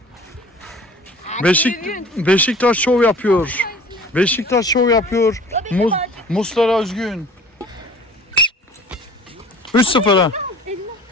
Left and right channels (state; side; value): normal; both; correlation 0.47